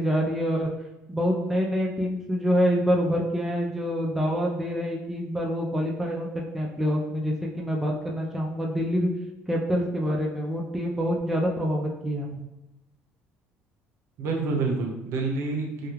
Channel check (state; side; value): normal; both; correlation 0.77